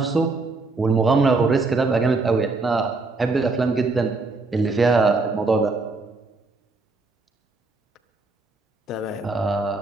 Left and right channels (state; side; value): quieter; left; 3.6 dB